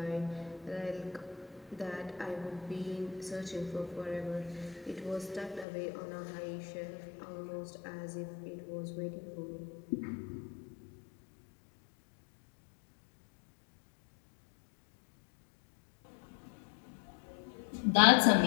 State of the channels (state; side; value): drops out; right; at 5.7 s